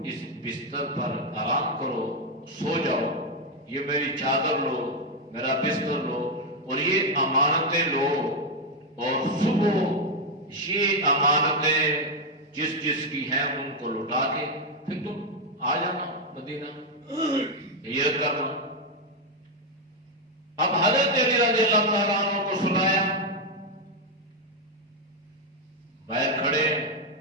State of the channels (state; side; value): normal; both; correlation 0.03